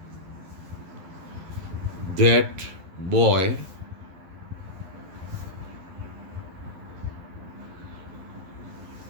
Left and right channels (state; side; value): late; left; 11 ms